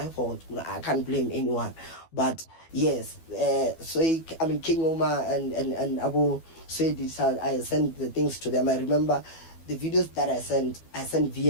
fault. I can't blame anyone. But yes, King Oma and Abu said I sent the things to them. I remember the videos that I sent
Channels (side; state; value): right; late; 12 ms